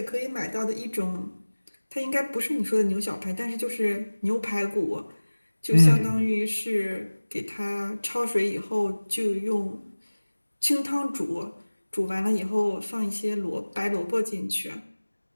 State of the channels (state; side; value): inverted; both; correlation -1.00